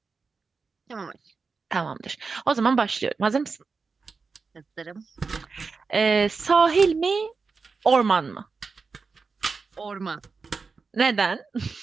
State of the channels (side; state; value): left; quieter; 4.7 dB